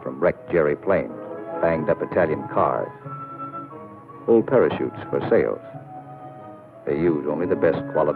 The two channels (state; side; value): identical; both; correlation 1.00